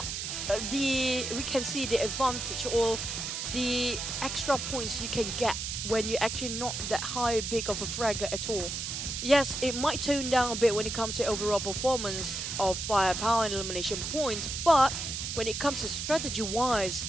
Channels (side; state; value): right; noise; hiss, 4 dB below the sound